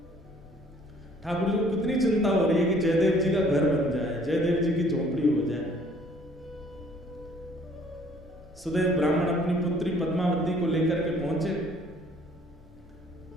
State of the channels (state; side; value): normal; both; correlation 0.59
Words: ठाकुर जी को कितनी चिंता हो रही है कि जयदेव जी का घर बन जाए, जयदेव जी की झोपड़ी हो जाए। सुदेव ब्राह्मण अपनी पुत्री पद्मावती को लेकर के पहुंचे।